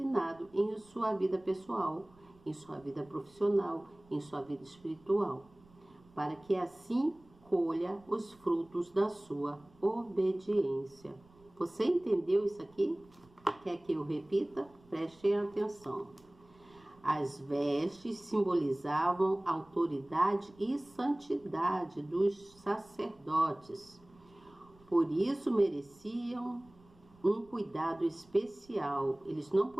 em sua vida pessoal, em sua vida profissional, em sua vida espiritual, para que assim colha os frutos da sua obediência. Você entendeu isso aqui? Quer que eu repita? Preste atenção. As vestes simbolizavam a autoridade e santidade dos sacerdotes. Por isso mereciam um cuidado especial. Eles não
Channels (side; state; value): right; noise; rumble, 28 dB below the sound